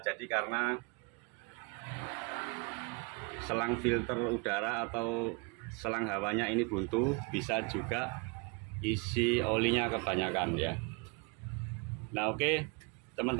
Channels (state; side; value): quieter; left; 30.2 dB